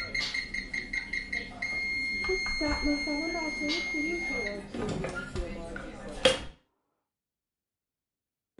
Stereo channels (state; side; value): identical; both; correlation 1.00